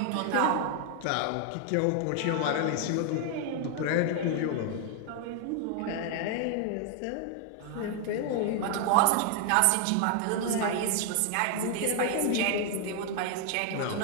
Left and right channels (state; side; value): different; both; correlation 0.00